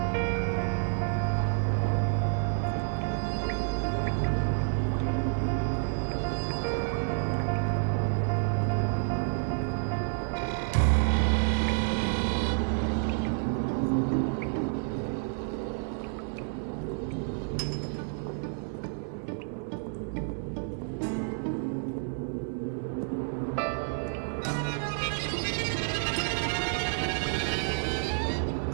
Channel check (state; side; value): silent; left; 55 dB below the other